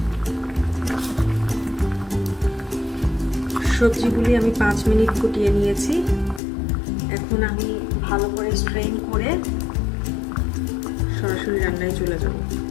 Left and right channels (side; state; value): right; drops out; at 6.4 s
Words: সবজিগুলি আমি 5 মিনিট ফুটিয়ে নিয়েছি। এখন আমি ভালো করে স্ট্রেন করে সরাসরি রান্নায় চলে